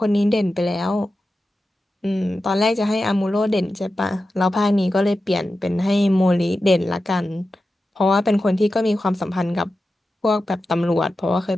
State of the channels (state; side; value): normal; both; correlation 0.92